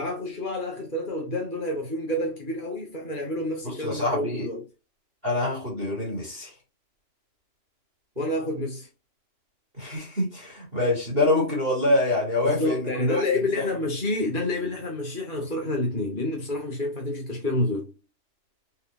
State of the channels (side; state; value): left; late; 2.9 ms